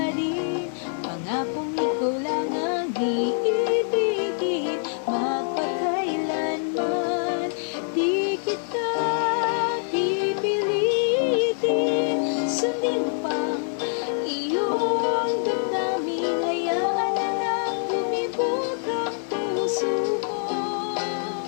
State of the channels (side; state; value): right; silent; digital silence